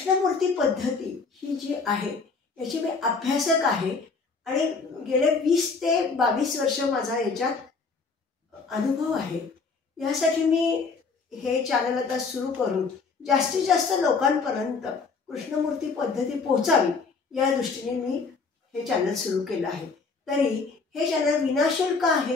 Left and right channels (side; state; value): right; quieter; 4.6 dB